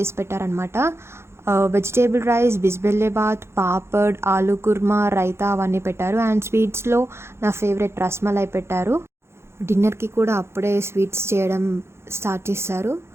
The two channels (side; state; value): left; late; 0.12 ms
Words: పెట్టారనమాట. వెజిటేబుల్ రైస్, బిస్బెల్లేబాత్, పాపడ్, ఆలూ కుర్మా, రైతా అవన్నీ పెట్టారు. అండ్ స్వీట్స్లో నా ఫేవరెట్ రస్మలై పెట్టారు. డిన్నర్కి కూడా అప్పుడే స్వీట్స్ చేయడం స్టార్ట్ చేశారు.